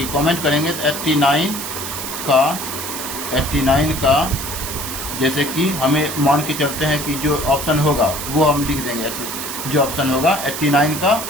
कमेंट करेंगे तो 89 का जैसे कि हमें मान के चलते हैं कि जो ऑप्शन होगा वो हम लिख देंगे, जो ऑप्शन होगा 89 का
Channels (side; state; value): right; noise; hiss, 6 dB below the sound